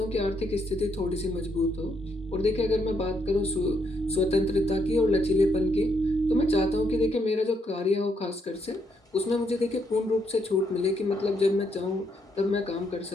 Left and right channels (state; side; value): normal; both; correlation 0.75